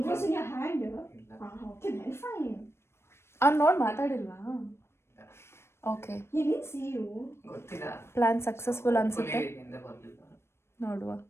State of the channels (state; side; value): late; right; 0.12 ms